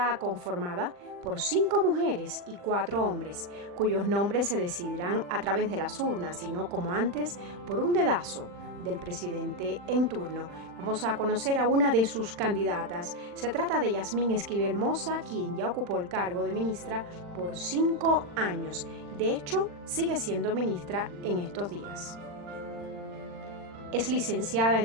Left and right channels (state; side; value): late; left; 40 ms